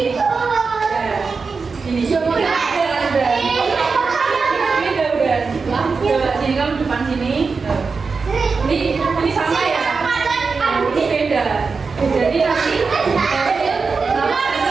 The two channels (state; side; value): quieter; left; 4.7 dB